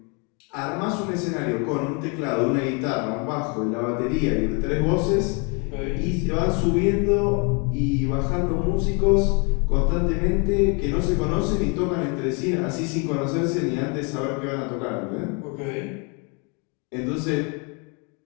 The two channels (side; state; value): right; quieter; 33.8 dB